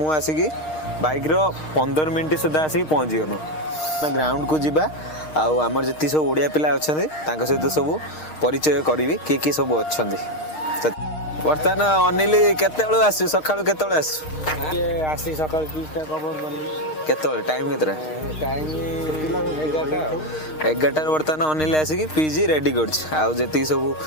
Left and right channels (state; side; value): late; right; 6.5 ms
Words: आसी कि बाइक रो 15 मिनिट सुधा आसी पहुंची गनो ना ग्राउंड को जिबा आ हमर जति सब ओडिया पिला अछन तांको सहित सब परिचय करबी के सब अछन बर्तमान अनिल केते बेलू आसु सकाळू केते बेलू आसु के आसी सकाळ 20टा कवर गली केते बेलू टाइम केतरा टाइम 11टा बर्तमान अनिल आसी पीजी रेडी करछ आ जति सब